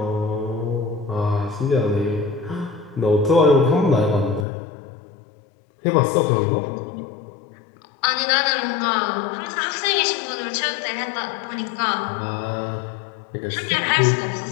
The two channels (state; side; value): drops out; right; at 4.5 s